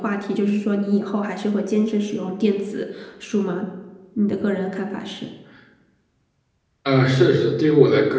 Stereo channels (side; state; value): both; identical; correlation 1.00